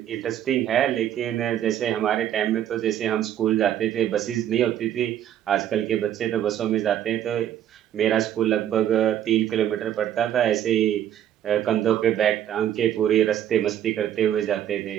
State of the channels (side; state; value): left; quieter; 10.9 dB